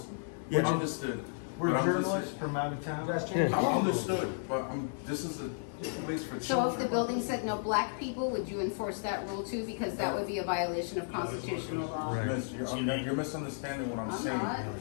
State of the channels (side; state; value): right; silent; digital silence